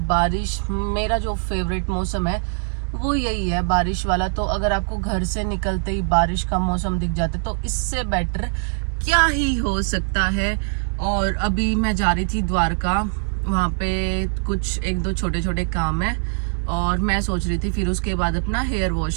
बारिश, मेरा जो फेवरेट मौसम है वो यही है, बारिश वाला। तो अगर आपको घर से निकलते ही बारिश का मौसम दिख जाता है तो इससे बेटर क्या ही हो सकता है। और अभी मैं जा रही थी द्वारका, वहाँ पे कुछ एक दो छोटे छोटे काम है और मैं सोच रही थी फिर उसके बाद अपना हेयर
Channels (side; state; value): left; silent; 64 dB below the other